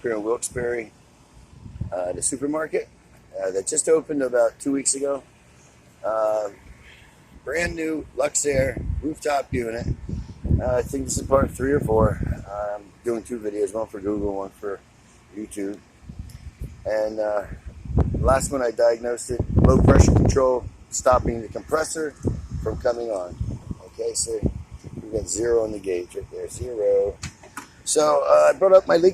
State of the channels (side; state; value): both; identical; correlation 1.00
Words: here in Wilkes-Barre, the supermarket that just opened about 2 weeks ago. Brand new luxaire rooftop unit. I think this is part 3 or 4. I'm doing 2 videos, one for Google, one for YouTube. And last one I diagnosed it, low pressure control, stopping the compressor from coming on. Okay, so we got 0 on the gauge right there, 0. So I brought up my